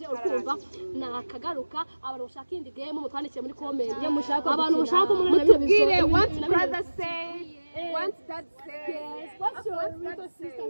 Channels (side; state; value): both; inverted; correlation -1.00